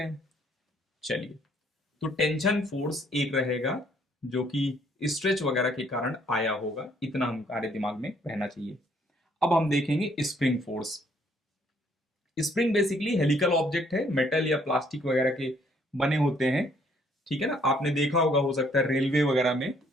हैं? चलिए, तो टेंशन फोर्स एक रहेगा जो कि स्ट्रेच वगैरह के कारण आया होगा, इतना हमारे दिमाग में रहना चाहिए। अब हम देखेंगे spring force. Spring basically helical object है, मेटल या प्लास्टिक वगैरह के बने होते हैं। ठीक है ना, आपने देखा होगा, हो सकता है रेलवे वगैरह में,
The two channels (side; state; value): both; normal; correlation 0.65